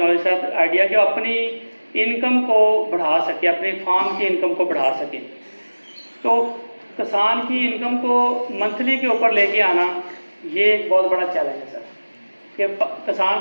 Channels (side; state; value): both; inverted; correlation -1.00